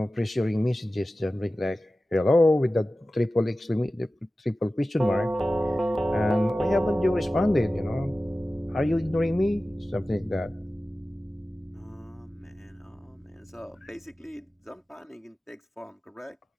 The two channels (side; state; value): both; normal; correlation 0.95